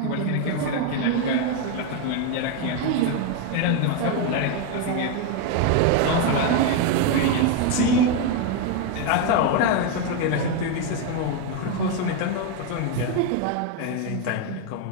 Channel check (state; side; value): different; both; correlation 0.01